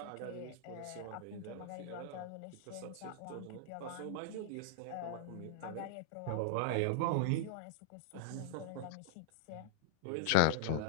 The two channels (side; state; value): both; different; correlation -0.01